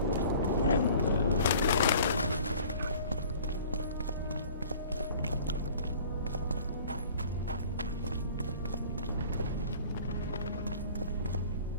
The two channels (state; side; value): inverted; both; correlation -0.48